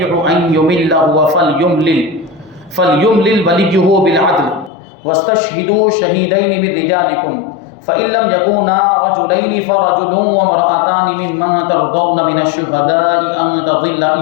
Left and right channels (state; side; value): drops out; right; at 4.7 s